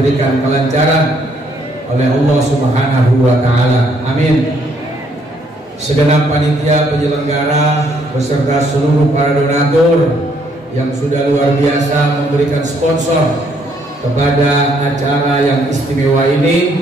kelancaran oleh Allah Subhanahu wa Ta'ala. Amin. Segenap panitia penyelenggara beserta seluruh para donatur yang sudah luar biasa memberikan sponsor kepada acara yang istimewa ini,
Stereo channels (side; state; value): both; normal; correlation 0.69